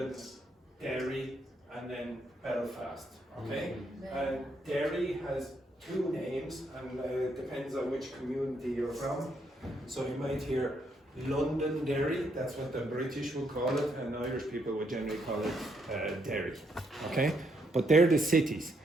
Derry, and then Belfast. Okay? And Derry has two names, and it depends on which community you're from. So you might hear Londonderry, that's what the British will call it, and Irish people would generally call it Derry. Okay? But they're the cities.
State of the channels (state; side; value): normal; both; correlation 0.75